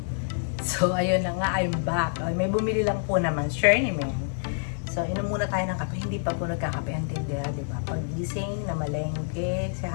So, ayun na nga, I'm back. May bumili lang po naman, sure naman. So, inom muna tayo ng kape. Hindi pa po nagkakape ang tindera, di ba? Pag-gising, namalengke, si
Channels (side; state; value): right; silent; 57 dB below the other